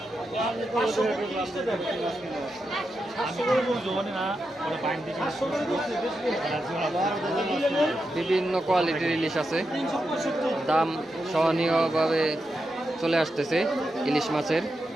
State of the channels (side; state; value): both; normal; correlation 0.87